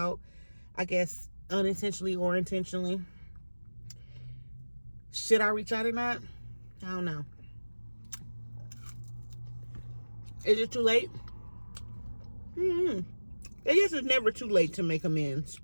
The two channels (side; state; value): both; inverted; correlation -1.00